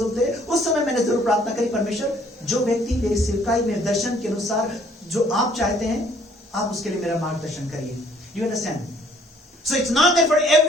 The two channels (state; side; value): normal; both; correlation 0.60